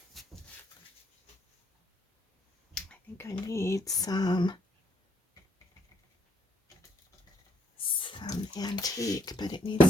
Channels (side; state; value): both; normal; correlation 0.71